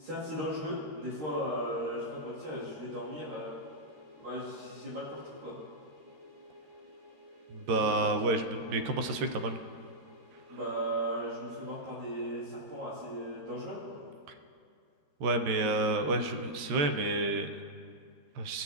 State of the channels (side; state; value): left; late; 13 ms